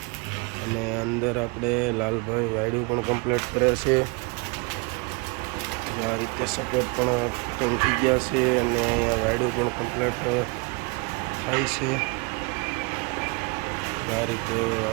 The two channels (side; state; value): left; quieter; 29.9 dB